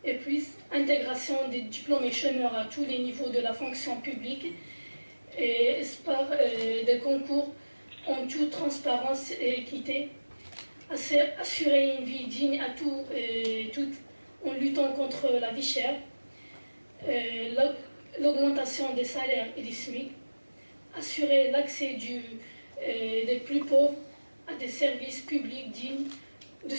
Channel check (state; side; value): inverted; both; correlation -1.00